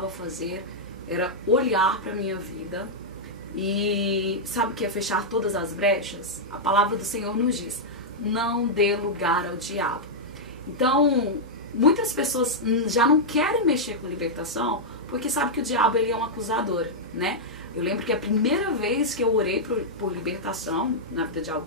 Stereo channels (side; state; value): both; normal; correlation -0.07